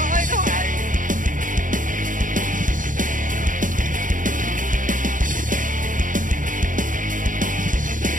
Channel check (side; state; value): left; late; 0.38 ms